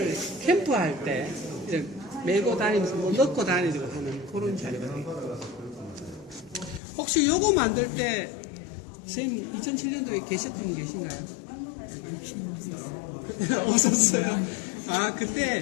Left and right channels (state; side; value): drops out; right; at 6.8 s